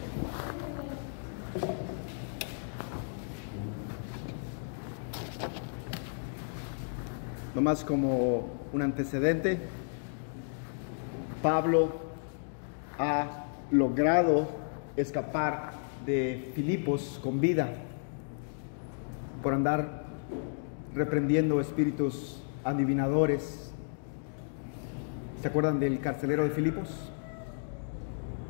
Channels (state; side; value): silent; right; digital silence